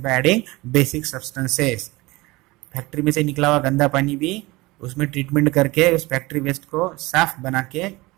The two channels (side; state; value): left; quieter; 21.6 dB